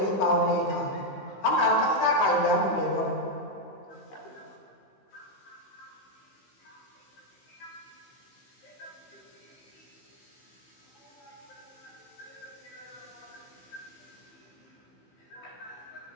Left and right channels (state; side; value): late; right; 15 ms